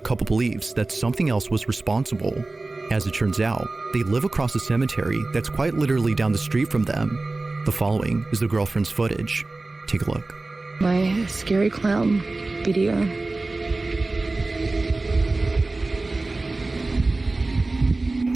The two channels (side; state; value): left; quieter; 3.2 dB